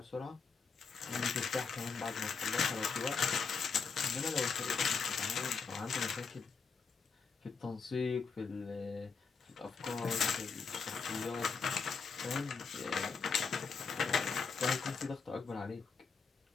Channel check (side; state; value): right; quieter; 5.3 dB